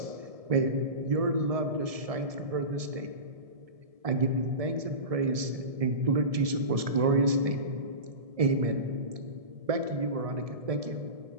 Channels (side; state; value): left; late; 1.7 ms